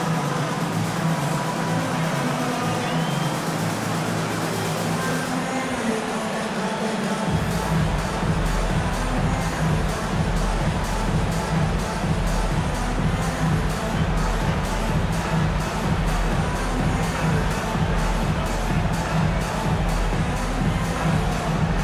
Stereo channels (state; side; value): identical; both; correlation 1.00